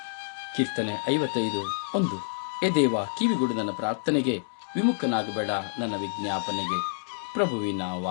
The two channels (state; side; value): silent; right; digital silence